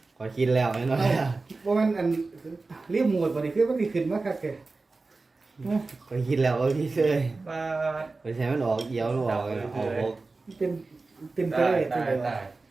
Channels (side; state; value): left; quieter; 3.7 dB